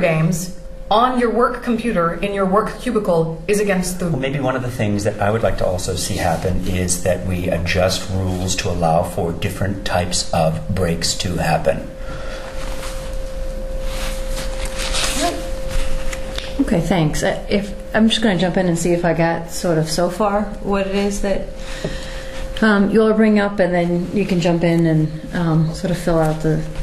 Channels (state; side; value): identical; both; correlation 1.00